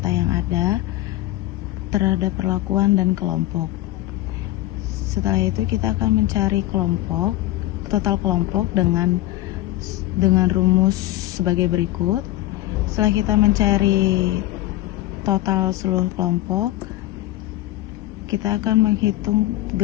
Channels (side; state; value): right; quieter; 15.8 dB